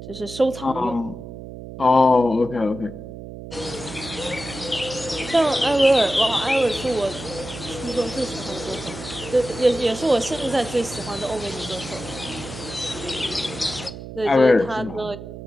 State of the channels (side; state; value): right; noise; hum, 12 dB below the sound